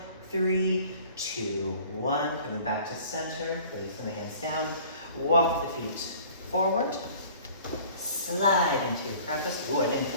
3, 2, 1, coming back to center, placing the hands down, walk the feet forward, slide into your crevice. Ooh, I didn't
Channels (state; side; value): inverted; both; correlation -0.49